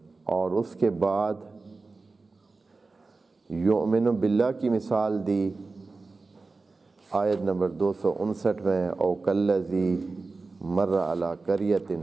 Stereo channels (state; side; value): quieter; left; 3.8 dB